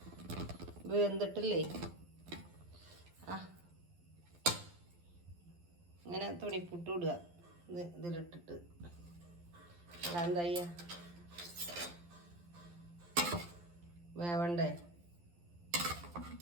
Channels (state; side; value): late; left; 12 ms